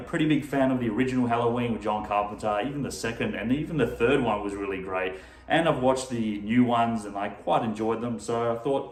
big fan of the original Halloween with John Carpenter, even the second and even the third one was really great. And I've watched the new ones and I quite enjoyed them, so I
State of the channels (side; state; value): both; identical; correlation 1.00